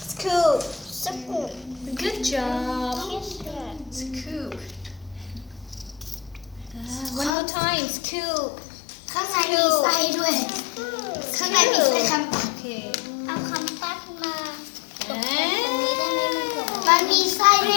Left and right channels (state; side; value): drops out; right; at 7.3 s